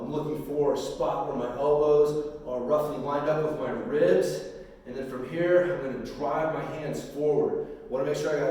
looking for a spot where my elbows are roughly lined up with my ribs. And then from here, I'm going to drive my hands forward. I want to make sure I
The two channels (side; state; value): both; identical; correlation 1.00